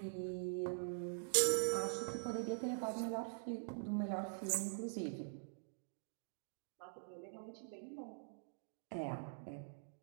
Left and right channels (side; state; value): left; silent; digital silence